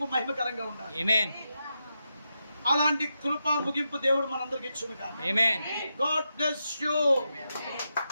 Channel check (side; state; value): both; inverted; correlation -0.87